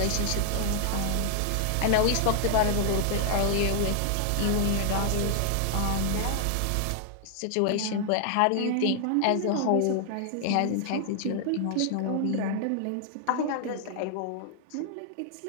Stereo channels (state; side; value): different; both; correlation 0.00